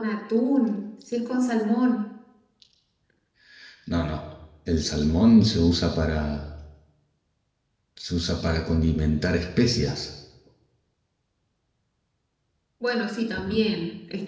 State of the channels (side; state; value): both; identical; correlation 1.00